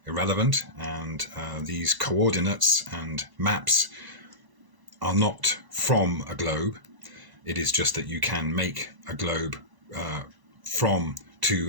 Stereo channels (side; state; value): left; late; 1.0 ms